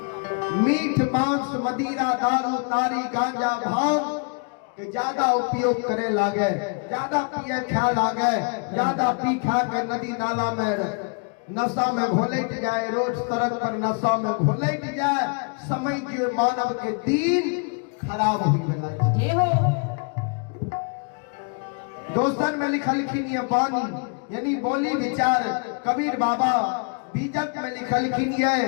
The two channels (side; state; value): right; quieter; 37.5 dB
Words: मीठ मांस मदिरा दारू तारी गांजा भांग के ज्यादा उपयोग करे लागे ज्यादा पिए खा लागे ज्यादा पी खा के नदी नाला में नशा में घोलट जाए रोज सड़क पर नशा में घोलट जाए समय के मानव के दिन खराब हुई बना दोस्तन में लिखलखिन ये बानी यानी बोली विचार कबीर बाबा बीजक में लिखलखिन ये